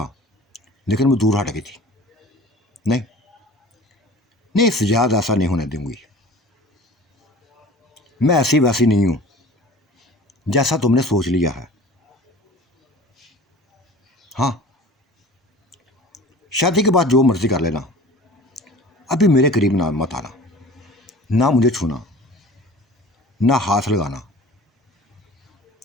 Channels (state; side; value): normal; both; correlation 0.42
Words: लेकिन वो दूर हट गई थी। नहीं नहीं, सजाद ऐसा नहीं होने दूंगी। मैं ऐसी वैसी नहीं हूं जैसा तुमने सोच लिया है। हाँ, शादी के बाद जो मर्जी कर लेना, अभी मेरे करीब ना मत आना, ना मुझे छूना, ना हाथ लगाना,